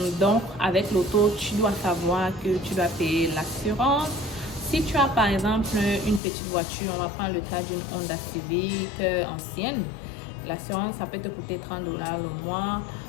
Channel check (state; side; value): drops out; right; at 6.2 s